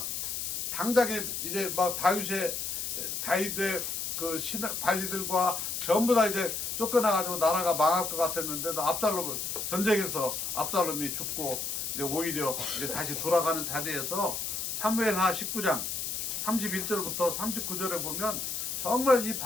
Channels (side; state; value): left; noise; hiss, 3 dB below the sound